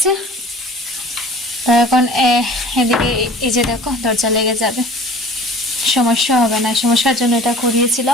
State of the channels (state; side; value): normal; both; correlation 0.45